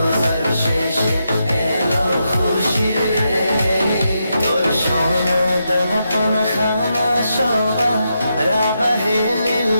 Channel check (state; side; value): inverted; both; correlation -0.84